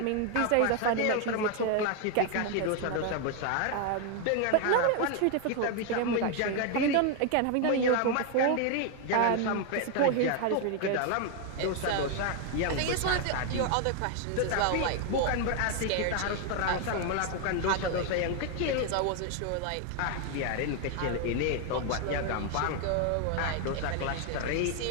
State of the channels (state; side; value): different; both; correlation 0.01